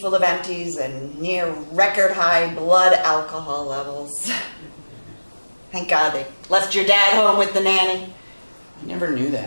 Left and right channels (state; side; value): inverted; both; correlation -1.00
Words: of empties and near record-high blood alcohol levels. Thank God they left your dad home with the nanny. I never knew